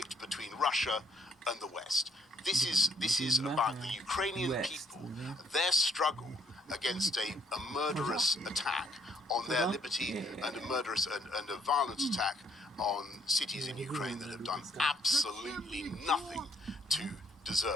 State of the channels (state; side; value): normal; both; correlation 0.68